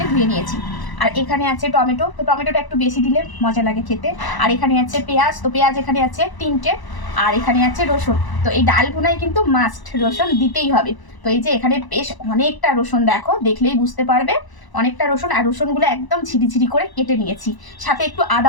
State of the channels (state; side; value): late; right; 1.0 ms